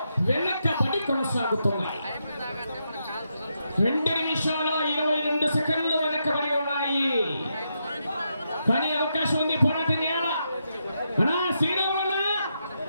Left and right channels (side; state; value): both; inverted; correlation -0.83